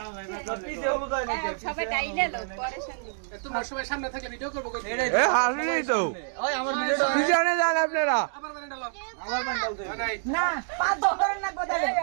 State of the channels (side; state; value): left; silent; digital silence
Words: পিছে হলো তাই নাকি সবাই ডাইলে লোক পরেশান দিব তোমার সবাই সামনে থাকলে ভিডিও করব কই এ হাসলি তো ওই আমার ভিডিওটা পিছনে যান আপনারা আবার মানে ডালো আমার বান্ডাল দে নাই না পাঁচ ধরে না গোদা